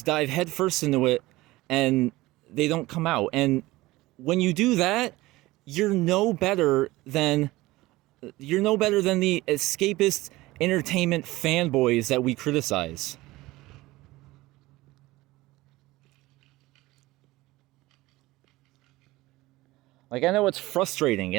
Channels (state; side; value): quieter; left; 19.1 dB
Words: headfirst into it and they don't come out. And when you do that, you're no better than the escapist entertainment fanboys that we criticize. Like, I know it's frustrating,